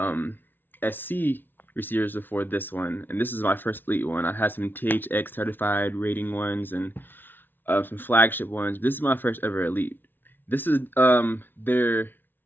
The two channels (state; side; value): late; right; 0.095 ms